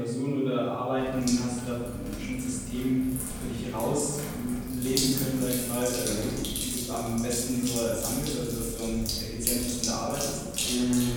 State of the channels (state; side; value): identical; both; correlation 1.00